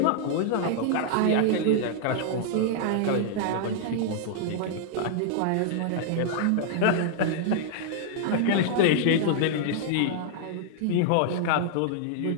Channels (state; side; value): different; both; correlation -0.01